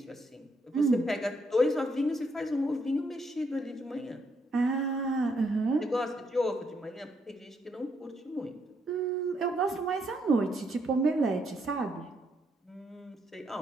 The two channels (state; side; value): normal; both; correlation 0.75